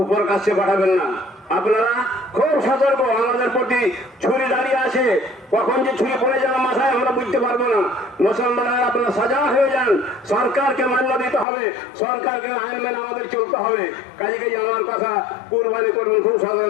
উপর কাছে পাঠাবেন না। আপনারা খুব সতর্ক, আমাদের প্রতি ছুরি দাঁড়িয়ে আসে, কখন যে ছুরি পড়ে যাওয়ার মাথায় আমরা বুঝতে পারবো না। মুসলমানরা আপনারা সাজা হয়ে যান, সরকারকে মান্য দিতে হবে, সরকারকে আইন মেনে আমাদের চলতে হবে। কাজে কাজে আমার কথা, কুরবানি করবেন খুব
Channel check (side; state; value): right; drops out; at 11.5 s